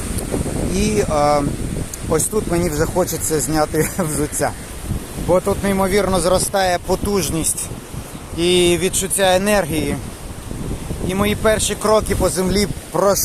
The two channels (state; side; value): identical; both; correlation 1.00